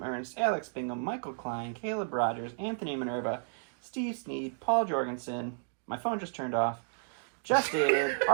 Ernst, Alex Bingham, Michael Klein, Caleb Rogers, Anthony Minerva, Steve Sneed, Paul Jorgensen, my phone just turned off, Just David,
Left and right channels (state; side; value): silent; left; digital silence